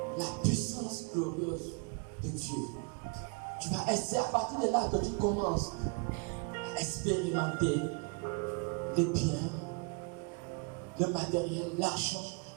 la puissance glorieuse de Dieu. Tu vas essayer à partir de là que tu commences à expérimenter les biens, le matériel, l'argent.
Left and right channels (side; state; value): left; quieter; 34.8 dB